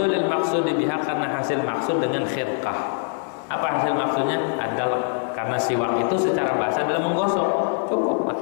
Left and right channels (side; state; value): right; silent; 63 dB below the other